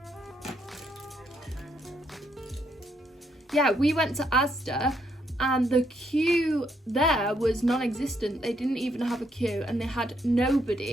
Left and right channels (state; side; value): normal; both; correlation 0.74